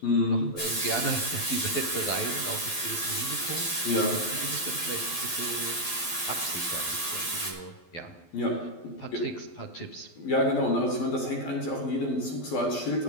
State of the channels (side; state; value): right; late; 12 ms